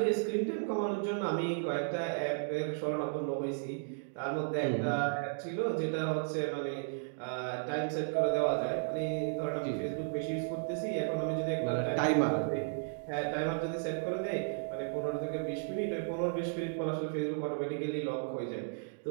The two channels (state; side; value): silent; left; digital silence